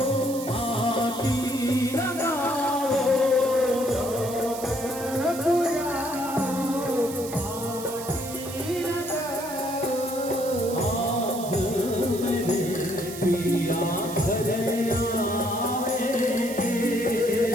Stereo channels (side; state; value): right; noise; hiss, 12 dB below the sound